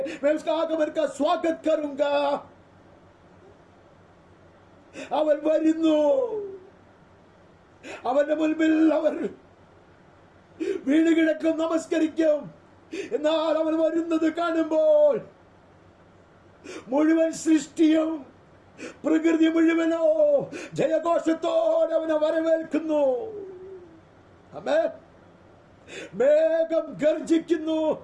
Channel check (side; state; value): both; identical; correlation 1.00